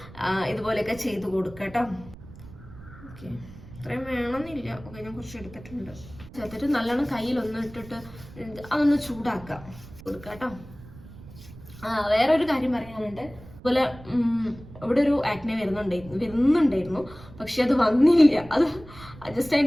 ഇതുപോലെയൊക്കെ ചെയ്ത് കൊടുക്കാം കേട്ടോ. ഓക്കെ, ഇത്രയും വേണമെന്നില്ല. ഓക്കെ, ഞാൻ കുറച്ച് എടുത്തിട്ടുണ്ട്. ചേർത്തിട്ട് നല്ലോണം കയ്യിലൊന്ന് ഇട്ടിട്ട് അതൊന്ന് ചൂടാക്കാം കൊടുക്കാം കേട്ടോ. വേറൊരു കാര്യം പറയാനുണ്ട്. അതുപോലെ ഇവിടെ ഒരു ആക്നെ വരുന്നുണ്ടായിരുന്നു, പക്ഷെ അത് വന്നില്ല. അത് ജസ്റ്റ്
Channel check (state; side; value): noise; right; rumble, 18 dB below the sound